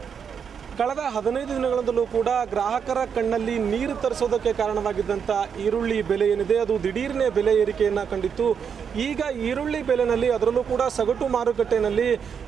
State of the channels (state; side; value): quieter; left; 7.1 dB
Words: ಕಳೆದ 15 ದಿನಗಳಿಂದಲೂ ಕೂಡ ಗ್ರಾಹಕರ ಕಣ್ಣಲ್ಲಿ ನೀರು ತರಿಸೋದಕ್ಕೆ ಕಾರಣವಾಗಿದ್ದಂಥ ಈರುಳ್ಳಿ ಬೆಲೆ ಏನಿದೆ ಅದು ದಿಢೀರ್ನೇ ಬೆಲೆ ಏರಿಕೆಯನ್ನು ಕಂಡಿತ್ತು. ಈಗ ಈರುಳ್ಳಿ ಬೆಲೆಯಲ್ಲಿ ಅದರಲ್ಲೂ ಕೂಡ ಸಗಟು ಮಾರುಕಟ್ಟೆಯಲ್ಲಿ